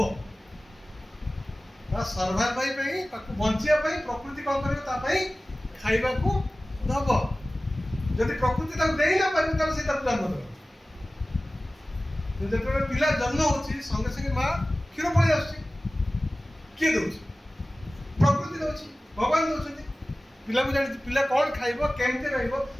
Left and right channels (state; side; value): normal; both; correlation 0.97